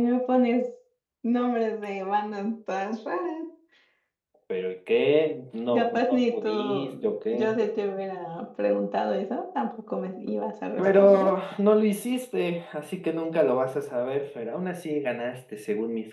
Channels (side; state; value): both; identical; correlation 1.00